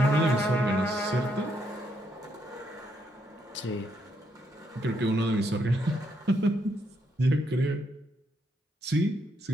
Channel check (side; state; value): both; normal; correlation 0.76